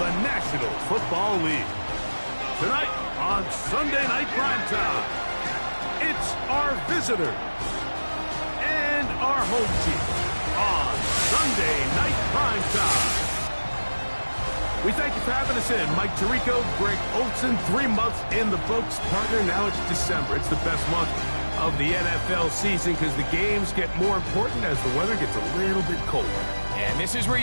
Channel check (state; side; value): inverted; both; correlation -1.00